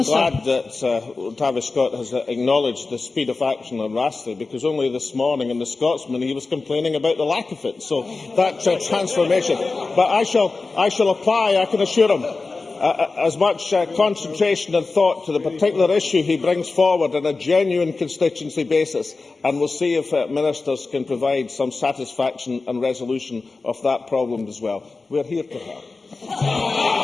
glad that Travis Scott has acknowledged the speed of action on Razzie, because only this morning in the Scotsman he was complaining about the lack of it. So that's a transformation. But I shall apply, I can assure him. as much concentration and thought to the particular issue he brings forward on a genuine constituency basis, and we'll see if ministers can provide some satisfaction and resolution of that problem as well. We are here to help.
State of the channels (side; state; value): right; quieter; 3.8 dB